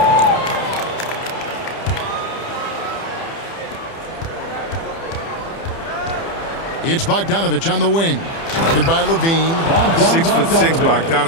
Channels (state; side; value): late; right; 30 ms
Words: It's Bogdanovich on the wing. Started by Levine. 6'6",